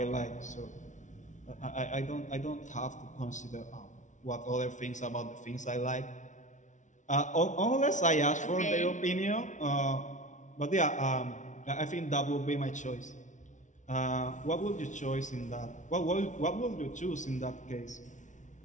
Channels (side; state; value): right; late; 0.36 ms